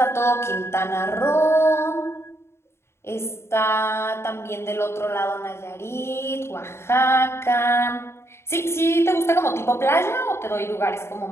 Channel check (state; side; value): late; right; 0.12 ms